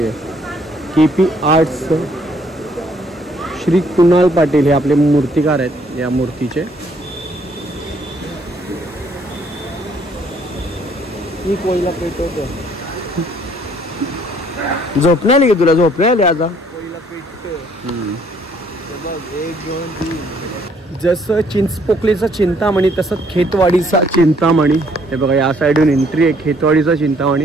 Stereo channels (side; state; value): both; normal; correlation 0.64